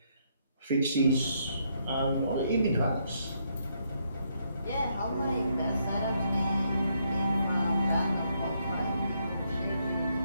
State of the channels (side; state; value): both; inverted; correlation -0.75